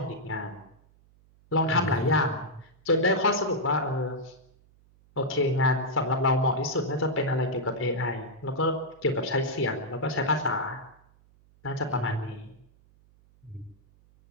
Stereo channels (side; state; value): right; noise; hum, 30 dB below the sound